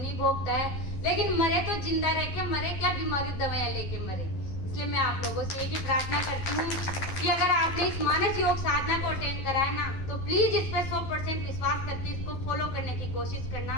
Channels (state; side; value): late; right; 11 ms